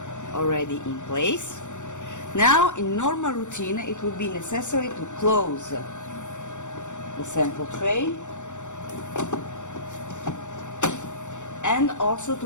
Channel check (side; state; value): right; late; 0.85 ms